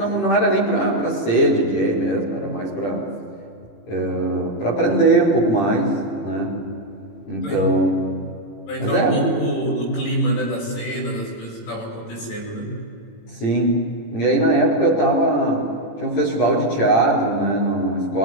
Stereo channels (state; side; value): late; right; 18 ms